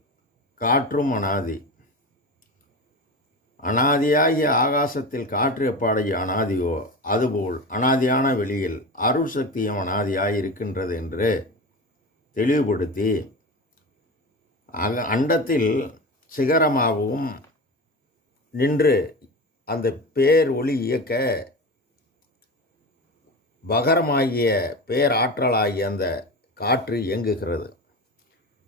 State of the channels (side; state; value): both; normal; correlation 0.27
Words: காற்றும் அனாதி. அனாதியாகிய ஆகாசத்தில் காற்று எப்பாடைய அனாதியோ அதுபோல் அனாதியான வெளியில் அருள் சக்தியும் அனாதியாய் இருக்கின்றது என்று தெளிவுபடுத்தி அண்டத்தில் சிகரமாகவும் நின்று அந்த பேர் ஒளி இயக்க பகரமாகிய பேராற்றலாகிய அந்த காற்று இயங்குகிறது.